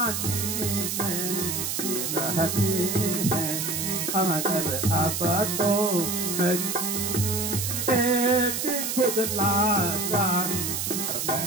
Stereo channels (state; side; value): noise; right; hiss, 2 dB below the sound